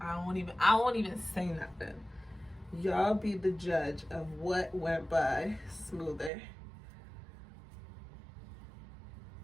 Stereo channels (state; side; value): drops out; left; at 6.3 s